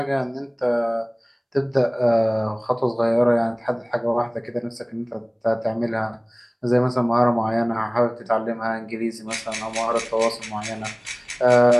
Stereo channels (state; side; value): identical; both; correlation 1.00